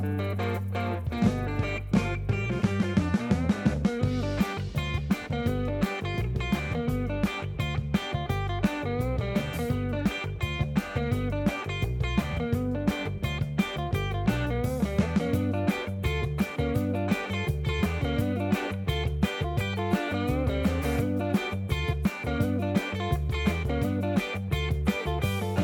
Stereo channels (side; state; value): both; identical; correlation 1.00